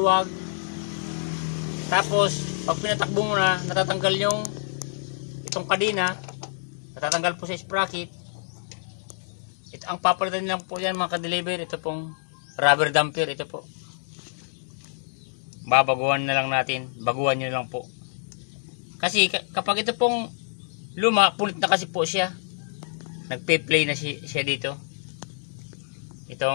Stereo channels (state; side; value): silent; right; digital silence